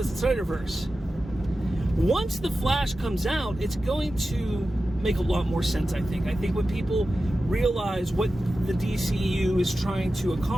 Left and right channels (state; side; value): normal; both; correlation 0.93